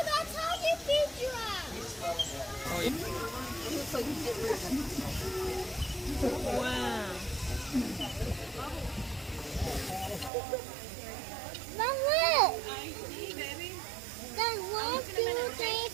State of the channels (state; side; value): drops out; left; at 10.3 s